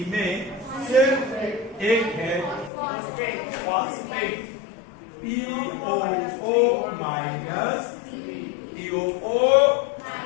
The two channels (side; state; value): right; drops out; at 2.7 s